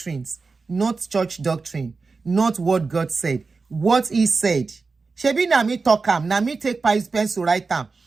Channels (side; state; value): left; quieter; 4.3 dB